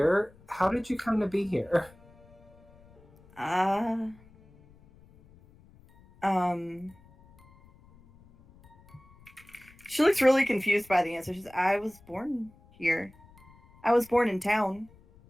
How did you come to be here? She looks really confused by the answer. She says, "I was born here. I was born in town."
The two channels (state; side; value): noise; left; rumble, 26 dB below the sound